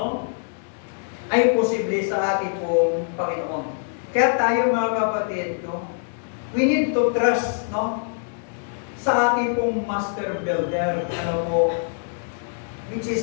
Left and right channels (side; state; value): right; silent; digital silence